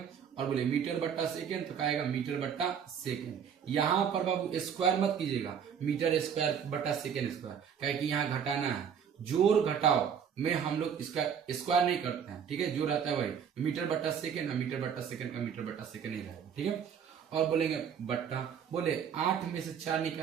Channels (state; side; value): quieter; left; 7.7 dB